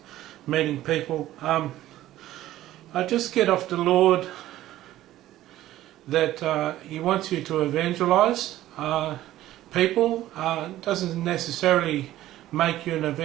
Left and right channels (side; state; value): left; quieter; 14.4 dB